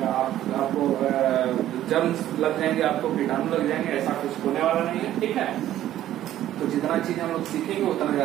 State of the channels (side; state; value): left; quieter; 12.8 dB